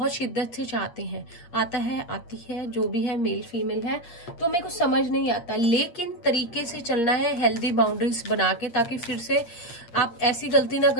शिद्दत से चाहते हैं, आता है, आती है, जो भी है, मेल फीमेल है, तो मेरे को समझ नहीं आता, लेकिन तरीके से चलना है, हेल्दी बाउंड्रीज बना के, ताकि फिर से आप ऐसी गलती ना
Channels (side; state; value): right; late; 8.5 ms